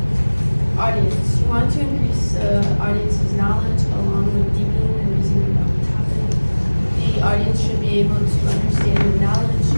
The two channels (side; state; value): both; inverted; correlation -1.00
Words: audience. You want to increase the audience's knowledge along with deepening and reasoning about the topic. The audience should be able to understand the knowledge